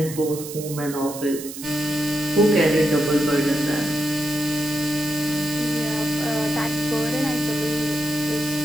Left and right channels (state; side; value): noise; right; hiss, 11 dB below the sound